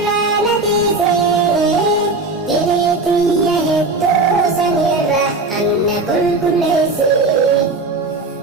na dhiise diriitiyya hedduu sanirra anna qulqulleessi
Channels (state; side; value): quieter; left; 3.3 dB